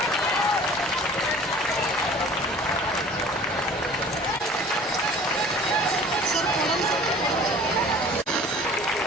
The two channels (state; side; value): normal; both; correlation 0.47